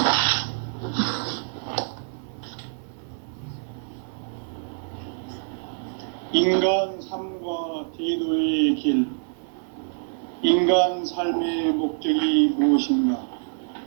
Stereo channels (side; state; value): left; silent; 61 dB below the other